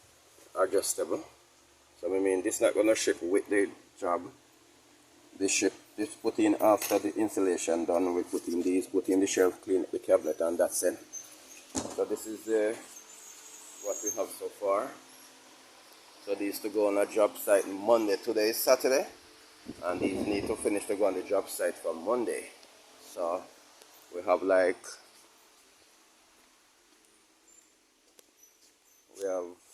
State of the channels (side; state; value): both; identical; correlation 1.00